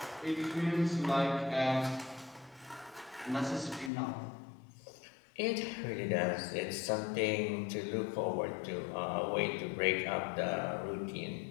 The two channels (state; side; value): drops out; right; at 3.9 s